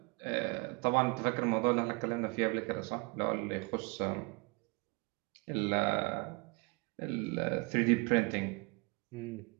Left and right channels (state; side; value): quieter; left; 28.9 dB